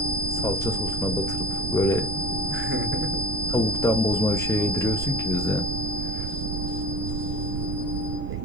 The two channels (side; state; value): right; noise; rumble, 2 dB below the sound